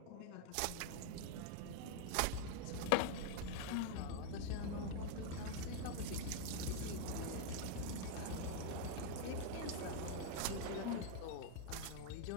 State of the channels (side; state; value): both; different; correlation 0.00